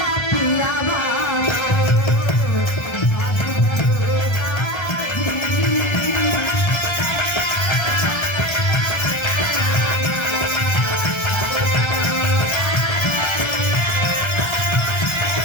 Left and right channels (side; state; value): right; late; 1.3 ms